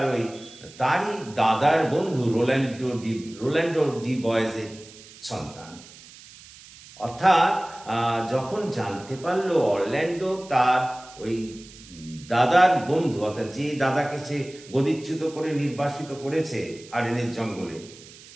ওই তারই দাদার বন্ধু রোল্যান্ডো ডি বয়েজের সন্তান, অর্থাৎ যখন জানতে পারল অরল্যান্ডো তার ওই দাদার বন্ধু, অর্থাৎ যে দাদাকে সে গদিচ্যুত করে নির্বাসিত করেছে আর্ডেনের জঙ্গলে,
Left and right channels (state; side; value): noise; right; hiss, 20 dB below the sound